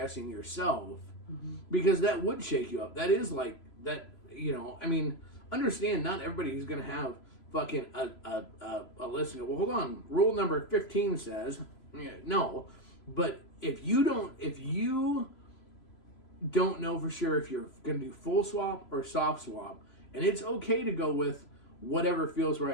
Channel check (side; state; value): right; late; 3.0 ms